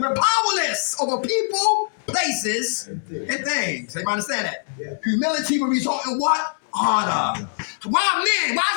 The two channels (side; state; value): right; silent; 64 dB below the other